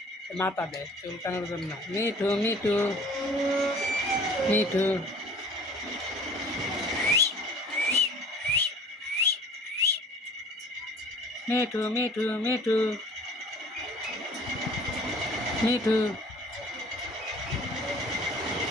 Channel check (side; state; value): both; normal; correlation 0.48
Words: মাথা দেয় চুলকানোর জন্য। মিঠু মিঠু মিঠু মিঠু মিঠু মিঠু মিঠু